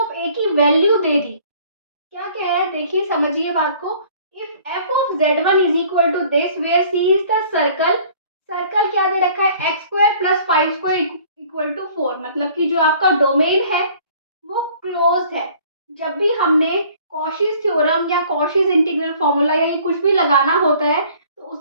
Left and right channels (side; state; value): both; inverted; correlation -0.54